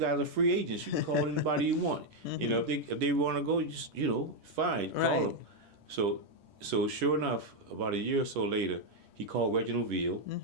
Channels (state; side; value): late; left; 10 ms